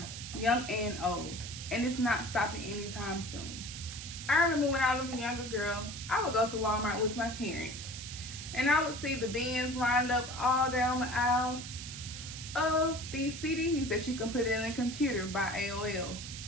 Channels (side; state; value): right; noise; hiss, 9 dB below the sound